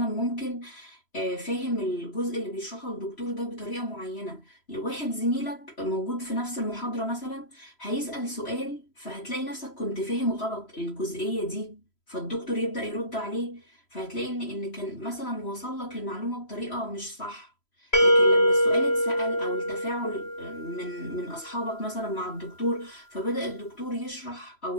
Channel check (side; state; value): right; late; 3.0 ms